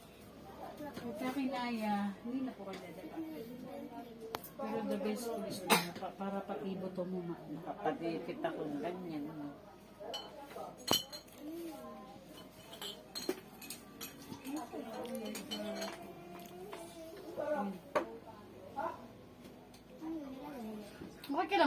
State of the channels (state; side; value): identical; both; correlation 1.00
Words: Kung kinaya, hindi na po kayo dadakanin. Pero the best ko is para patibo to mo maano. Kapadipit akong ganyan. Okay ka